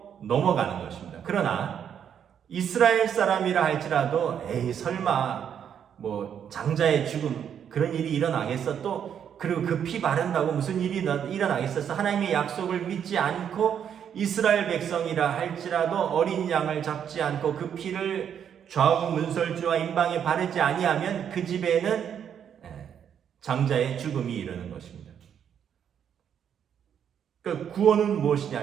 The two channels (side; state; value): left; quieter; 8.5 dB